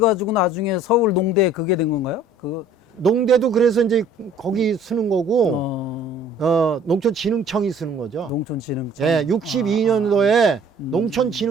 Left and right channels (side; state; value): both; normal; correlation 0.54